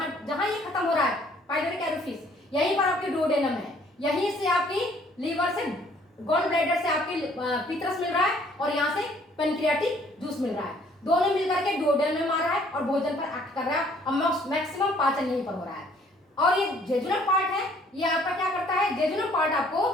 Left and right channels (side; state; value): both; normal; correlation 0.60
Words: जहां ये खत्म हो रहा है पाइलोरिक एरोफिस, यहीं पर आपके डुओडेनम है, यहीं से आपकी लीवर से, गॉल ब्लैडर से आपकी पीत्रस मिल रहा है और यहाँ से पेनक्रियाटिक जूस मिल रहा है। दोनों मिलकर के डुओडेनम में मार रहा है और भोजन पर एक्ट कर रहा है और मैक्सिमम पाचन यहीं पर हो रहा है। और ये जेजुनल पार्ट है, ये आपका क्या करता है, जेजुनल पार्ट आपको